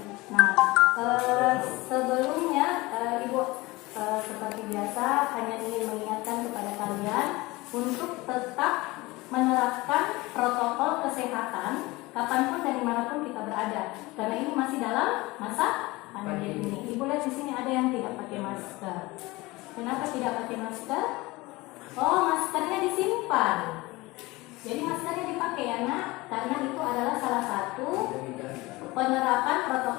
Nah, sebelumnya Ibu seperti biasa hanya ingin mengingatkan kepada kalian untuk tetap menerapkan protokol kesehatan kapanpun dan dimanapun kita berada, karena ini masih dalam masa pandemi ini. Ibu lihat di sini ada yang tidak pakai masker. Kenapa tidak pakai masker? Oh, maskernya disimpan. Jadi maskernya dipakai ya nak, karena itu adalah salah satu penerapan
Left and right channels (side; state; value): right; quieter; 21.5 dB